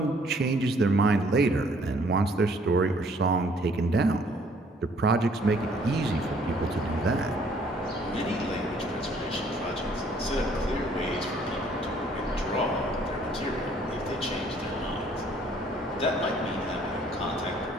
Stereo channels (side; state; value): both; normal; correlation 0.61